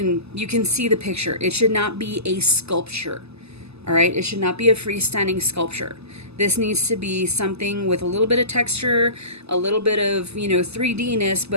see the picture. It should not be a sculpture, all right? It should not be a freestanding sculpture. This needs to be something with a little bit of texture, a little bit of, 3D-ness,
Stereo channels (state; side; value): late; left; 0.79 ms